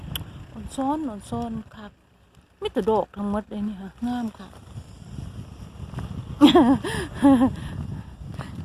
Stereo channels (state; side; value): identical; both; correlation 1.00